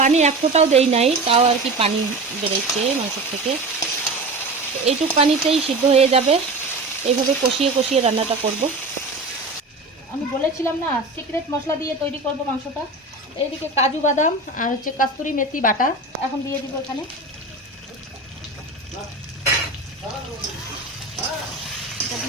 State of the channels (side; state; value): left; quieter; 3.1 dB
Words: পানি এক ফোঁটাও দেই নাই, তাও আর কি পানি বেরোচ্ছে মাংসের থেকে। এইটুক পানিতেই সিদ্ধ হয়ে যাবে। এইভাবে কষিয়ে কষিয়ে রান্নাটা করব। আমি বলেছিলাম না সিক্রেট মশলা দিয়ে তৈরি করব মাংসটা। এইদিকে কাজু বাদাম আর হচ্ছে কস্তুরি মেথি বাটা এখন দিয়ে দিব এখানে। এটা